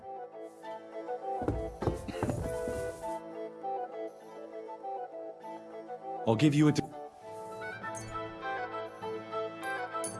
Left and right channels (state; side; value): identical; both; correlation 1.00